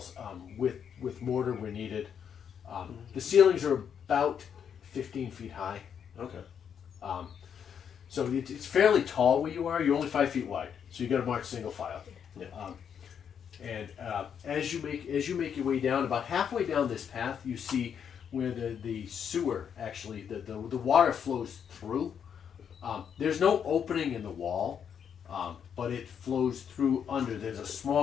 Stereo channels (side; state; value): right; quieter; 7.9 dB